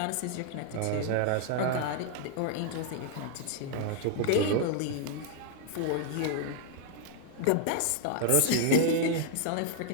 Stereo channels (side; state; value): both; different; correlation -0.01